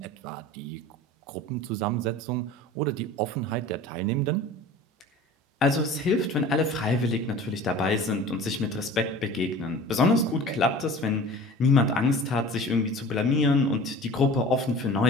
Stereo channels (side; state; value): both; normal; correlation 0.41